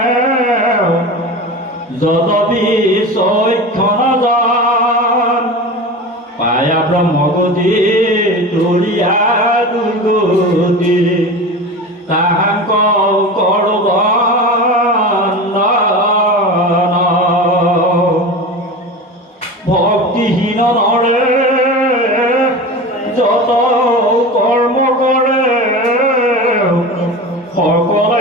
যদপি চৈক্ষণ যান পায়া ব্ৰহ্মগতি তুলিয়া দুৰ্গতি তাহাক কৰো বন্দন ভক্তিহীন নৰে যত কৰ্ম কৰে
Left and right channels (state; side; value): normal; both; correlation 0.30